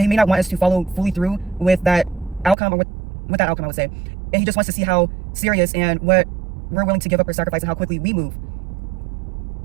may not want us to follow fully through with that outcome, or with that outcome, I would say. And he just wants to see how serious and what we're willing to give up or sacrifice, and how quickly we move.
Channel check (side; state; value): left; drops out; at 2.6 s